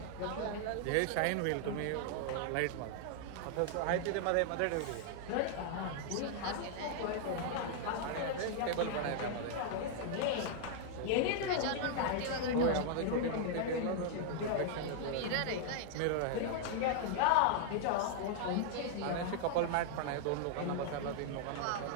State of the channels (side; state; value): both; different; correlation 0.00